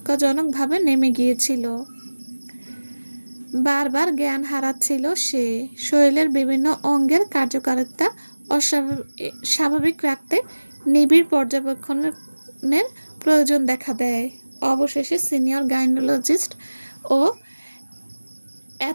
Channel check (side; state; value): both; inverted; correlation -1.00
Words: নেমে গিয়েছিল। বারবার জ্ঞান হারাচ্ছিল সে। শরীরের বিভিন্ন অঙ্গের কার্যকারিতা স্বাভাবিক রাখতে নিবিড় পর্যবেক্ষণের প্রয়োজন দেখা দেয়। অবশেষে সিনিয়র গাইনোলজিস্ট ও